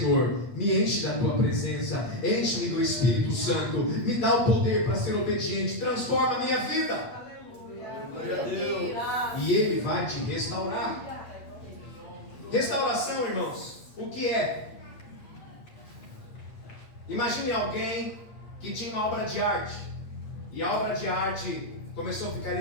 me enche da tua presença, enche-me do Espírito Santo, me dá o poder para ser obediente, transforma a minha vida. Glória a Deus. E Ele vai te restaurar. Restauração, irmãos, o que é? Imagine alguém que tinha uma obra de arte, e a obra de arte começou a ficar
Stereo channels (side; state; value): right; late; 8.5 ms